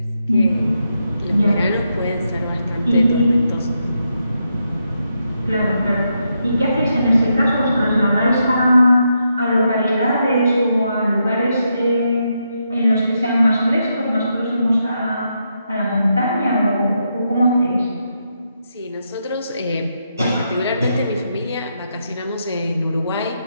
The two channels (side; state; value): both; inverted; correlation -0.82